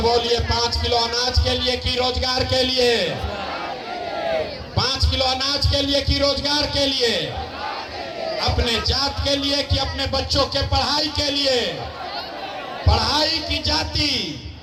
5 किलो अनाज के लिए कि रोजगार के लिए? 5 किलो अनाज के लिए कि रोजगार के लिए? अपने जात के लिए कि अपने बच्चों के पढ़ाई के लिए? पढ़ाई की जाति,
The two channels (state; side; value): identical; both; correlation 1.00